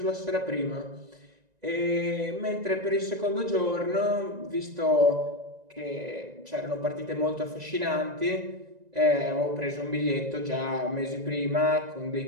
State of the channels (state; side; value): late; left; 1.9 ms